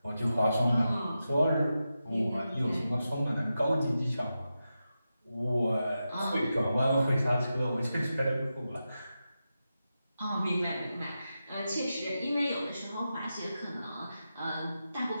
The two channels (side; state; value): both; inverted; correlation -0.90